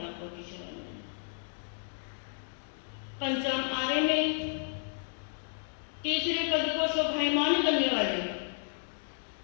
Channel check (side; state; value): right; silent; digital silence